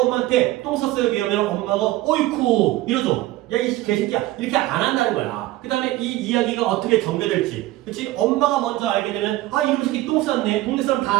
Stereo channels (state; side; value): quieter; left; 16.9 dB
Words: 똥 쌌어요 얘기하면 엄마가 어이쿠 이러죠. 야 이 개새끼야 이렇게 안 한다는 거야. 그 다음에 이 이야기가 어떻게 전개될지 그치? 엄마가 먼저 알게 되면 아 이놈 새끼 똥 쌌네 동네 사람